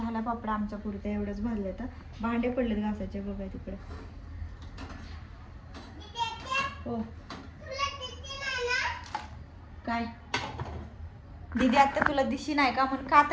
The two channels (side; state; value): both; identical; correlation 1.00